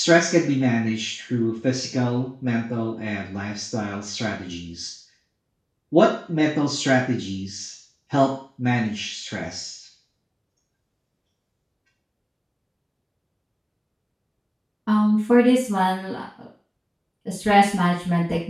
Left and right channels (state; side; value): identical; both; correlation 1.00